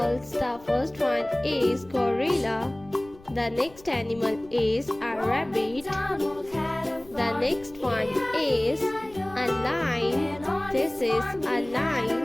The first one is gorilla. The next animal is a rabbit. The next one is a lion. This is a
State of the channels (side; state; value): left; noise; rumble, 23 dB below the sound